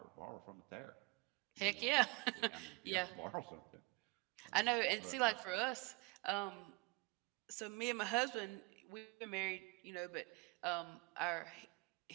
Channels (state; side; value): quieter; left; 26.4 dB